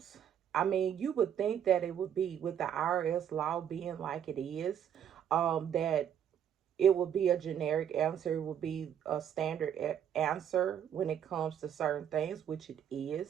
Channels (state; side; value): quieter; left; 9.3 dB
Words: I mean, you would think that it would be with the IRS law being like it is, that it would be a generic answer, it would be a standard answer when it comes to certain things, which it